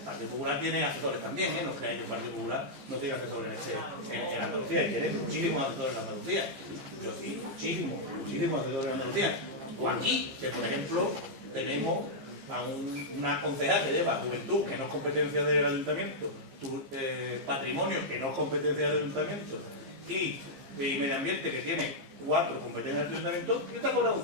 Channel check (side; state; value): left; late; 15 ms